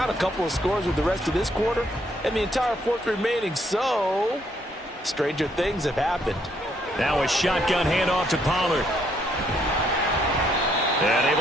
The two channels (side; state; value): both; normal; correlation 0.71